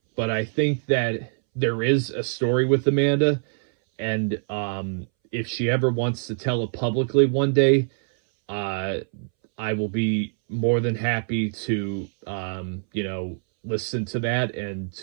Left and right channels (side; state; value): left; silent; 62 dB below the other